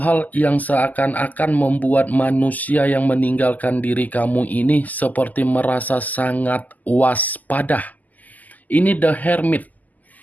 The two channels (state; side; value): late; right; 0.080 ms